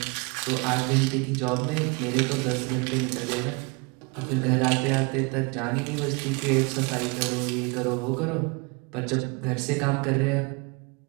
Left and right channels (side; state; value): left; quieter; 30.2 dB